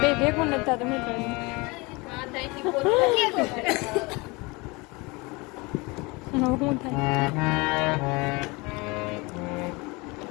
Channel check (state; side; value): quieter; right; 25.8 dB